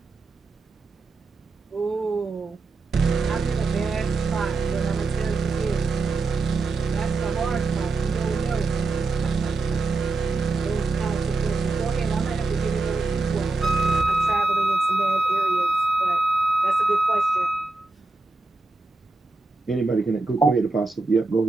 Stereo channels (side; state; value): left; quieter; 3.6 dB